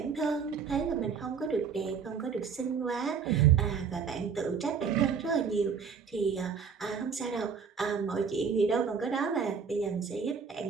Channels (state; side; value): quieter; left; 6.2 dB